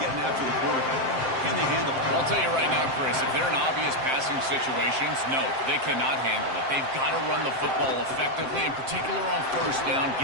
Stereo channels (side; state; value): left; late; 7.6 ms